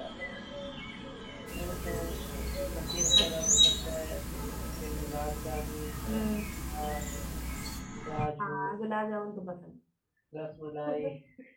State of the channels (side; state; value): both; identical; correlation 1.00